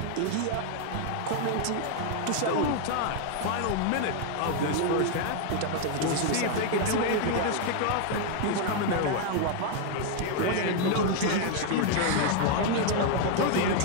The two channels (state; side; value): different; both; correlation 0.00